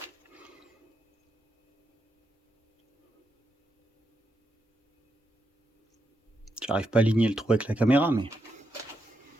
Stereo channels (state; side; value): normal; both; correlation 0.84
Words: J'arrive pas à aligner le trou avec la caméra, mais...